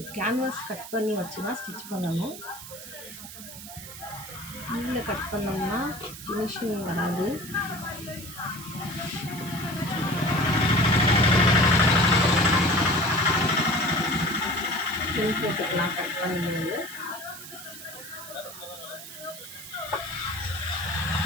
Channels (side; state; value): right; noise; hiss, 13 dB below the sound